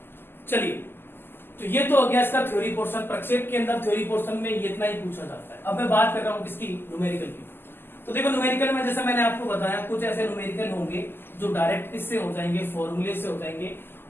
चलिए, तो ये तो हो गया इसका थ्योरी पोर्शन। प्रक्षेप के अंदर थ्योरी पोर्शन में ये इतना ही पूछा जाता है। अब मैं बात कर रहा हूं किसकी? न्यूमेरिकल की। तो देखो न्यूमेरिकल में जैसा मैंने आपको बताया कुछ ऐसे न्यूमेरिकल होंगे जो डायरेक्ट किससे हो जाएंगे? फॉर्मूले से हो जाएंगे।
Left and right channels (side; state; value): right; late; 0.10 ms